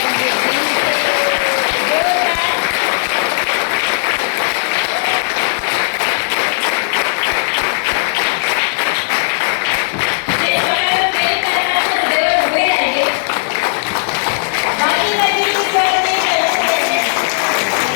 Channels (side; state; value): right; silent; digital silence